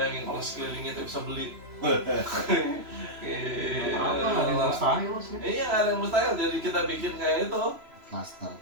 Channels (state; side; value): late; left; 3.0 ms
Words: bayangin kalau sekeliling itu bisa beli. Apa? Nggak ada yang mustahil sih. Iya, nggak ada yang mustahil. Jadi kita bikin kayak itu. Cluster.